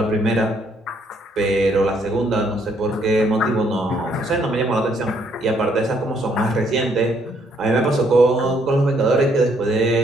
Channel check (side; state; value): both; normal; correlation 0.69